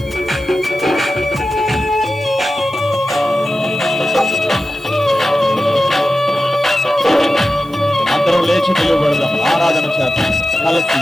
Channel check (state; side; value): noise; right; hiss, 27 dB below the sound